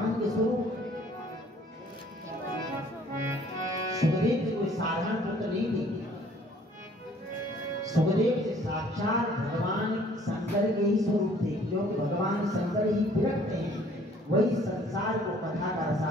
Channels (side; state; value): both; normal; correlation 0.57